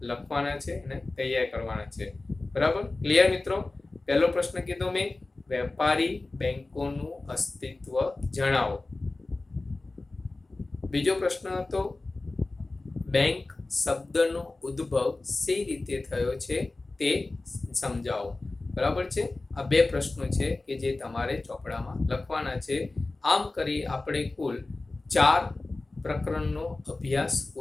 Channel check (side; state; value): right; quieter; 3.2 dB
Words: લખવાના છે અને તૈયાર કરવાના છે. બરાબર, ક્લિયર મિત્રો? પહેલો પ્રશ્ન કીધો મેં, વેપારી બેંકોનું અસ્તિત્વ જણાવો. બીજો પ્રશ્ન હતો બેંક શબ્દનો ઉદ્ભવ સી રીતે થયો છે તે સમજાવો. બરાબર છે. આ 2 પ્રશ્નો છે કે જે તમારે ચોપડામાં લખવાના છે. આમ કરી આપણે કુલ 4 પ્રકરણનો અભ્યાસ